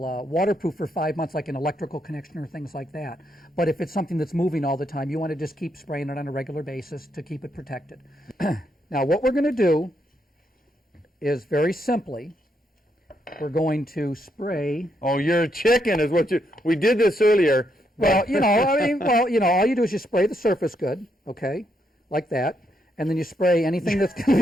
waterproof for 5 months, like an electrical connection or things like that. But if it's something that's moving all the time, you want to just keep spraying it on a regular basis to keep it protected. Now, what we're going to do is very simply, we're going to spray. Oh, you're a chicken, is what you. We did this earlier. Well, all you do is you spray the surface good, okay, like that, and then you spray anything that's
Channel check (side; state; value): both; normal; correlation 0.78